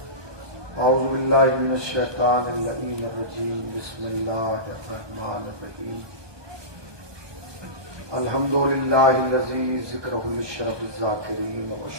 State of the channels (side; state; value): left; late; 1.2 ms